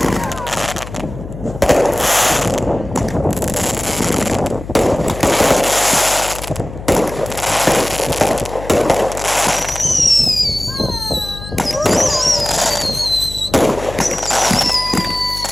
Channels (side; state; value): left; noise; hum, 12 dB below the sound